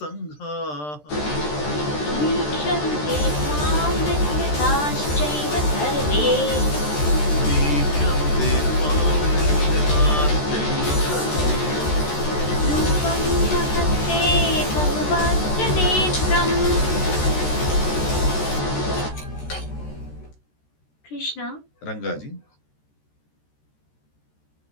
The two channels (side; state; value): right; late; 13 ms